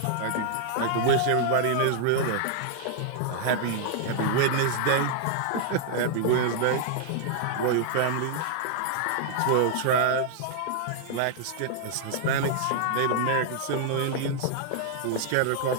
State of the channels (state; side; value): different; both; correlation 0.00